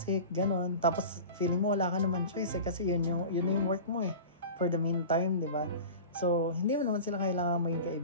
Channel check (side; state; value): both; inverted; correlation -0.34